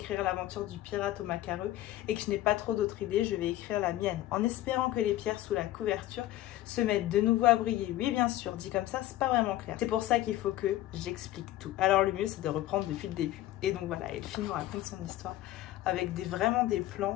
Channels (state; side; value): quieter; right; 14.7 dB